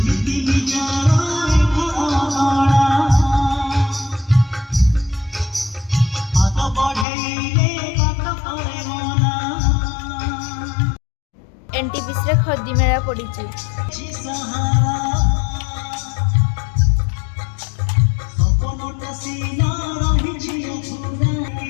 एनटीपीसी रे खदी मेला पड़ी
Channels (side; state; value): right; drops out; at 7.1 s